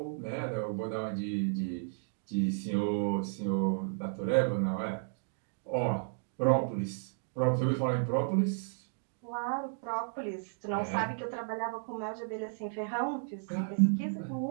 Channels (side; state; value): left; silent; digital silence